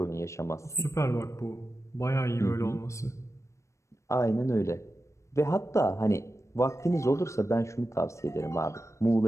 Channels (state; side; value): late; right; 0.14 ms